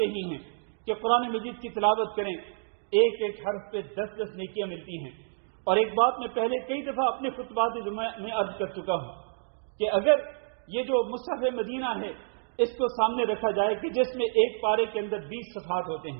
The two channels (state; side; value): silent; left; digital silence